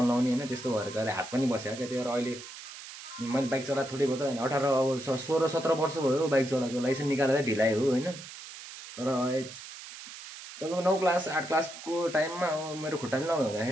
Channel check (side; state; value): right; noise; hiss, 13 dB below the sound